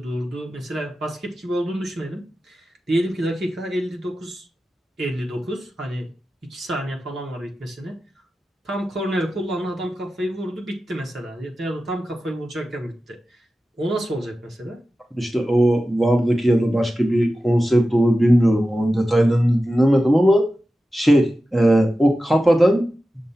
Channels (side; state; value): both; normal; correlation 0.93